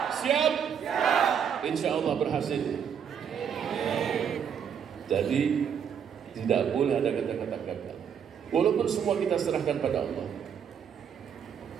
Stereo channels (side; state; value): left; quieter; 7.8 dB